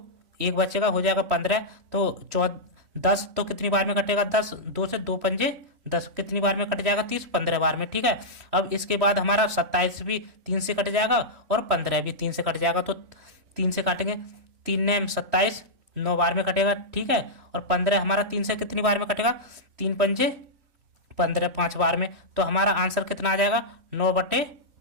1 बचेगा, हो जाएगा 15, तो 10 तो कितनी बार में कटेगा, 10, 2 से 2 पंजे 10, कितनी बार में कट जाएगा, 30, 15 बार में, ठीक है। अब इसके बाद हमारा 27 भी 3 से कट जाएगा और 15 भी 3 से कट जाएगा, तो 3 से काटेंगे, 3 ने 27, 9 बार में कटेगा, ठीक है। और 15 हमारा 3 से कितनी बार में कटेगा, 3 पंजे 15, 5 बार में, तो हमारा आंसर कितना आ जाएगा,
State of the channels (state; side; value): late; left; 3.1 ms